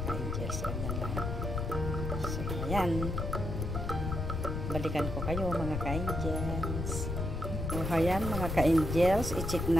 ka-angels. Ganyan lang. So, ayan. Balikan ko kayo mga ka-angels. So, ayan mga ka-angels, i-check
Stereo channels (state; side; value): noise; left; rumble, 3 dB below the sound